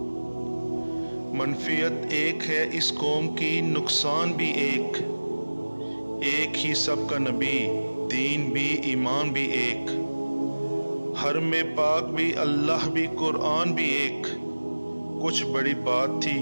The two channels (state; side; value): inverted; both; correlation -1.00